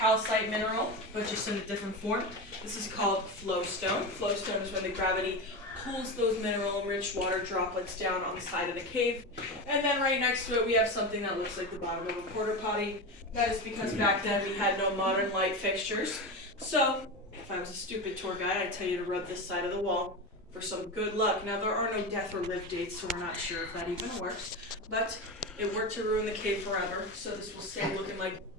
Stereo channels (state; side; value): normal; both; correlation 0.21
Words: mineral, but just in a different form. This is called flowstone. Flowstone is when the gravity pulls those mineral-rich water droplets down on the side of the cave. And then right next to it, we have something that looks like the bottom of a porta potty. That is because back then we had no modern light fixtures. So, if I was a stupid tour guide, I'd tell you to rub this side of the wall for some good luck. Now, there are no death or live dates, so we're not sure if that even works. But it worked to ruin the cave forever, so this will stay looking like